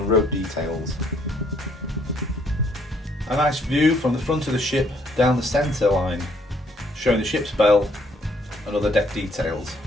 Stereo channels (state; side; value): normal; both; correlation 0.67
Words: rope details. A nice view from the front of the ship down the centre line, showing the ship's bell and other deck details.